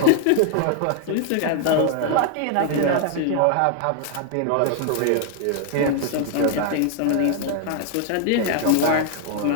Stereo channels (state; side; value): different; both; correlation 0.00